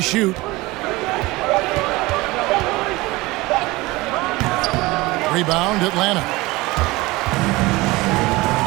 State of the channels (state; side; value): quieter; left; 21.2 dB